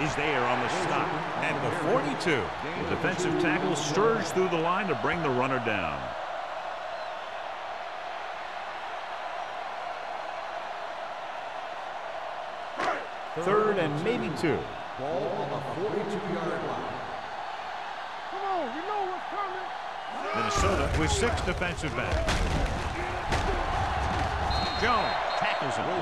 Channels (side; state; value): both; identical; correlation 1.00